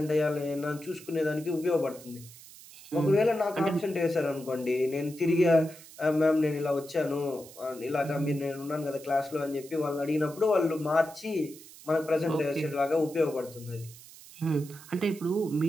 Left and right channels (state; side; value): noise; right; hiss, 19 dB below the sound